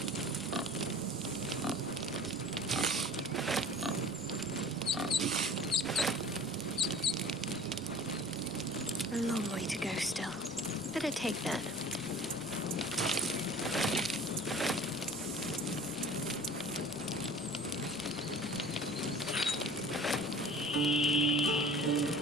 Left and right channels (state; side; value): noise; right; rumble, 23 dB below the sound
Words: A long way to go still. Better take that.